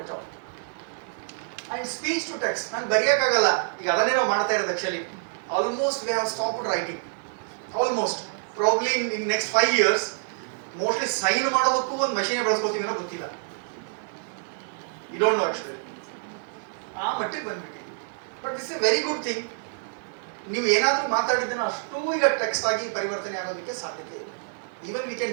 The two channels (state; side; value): silent; left; digital silence